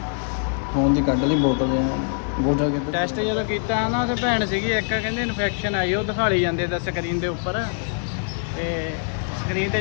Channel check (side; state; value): right; silent; 63 dB below the other